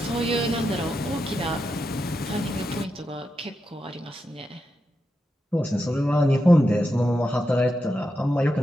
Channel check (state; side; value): normal; both; correlation 0.87